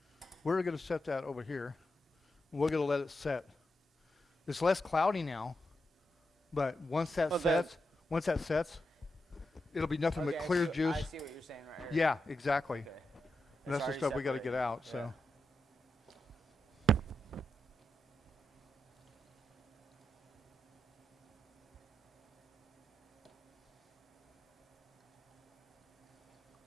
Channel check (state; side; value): normal; both; correlation 0.87